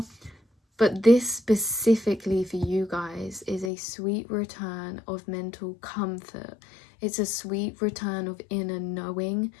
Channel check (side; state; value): right; drops out; at 3.7 s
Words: But this specifically for you guys is a sweet return of mental comfort. It's a sweet return of inner knowing,